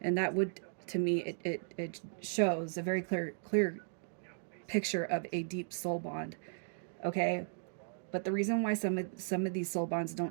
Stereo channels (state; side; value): silent; left; digital silence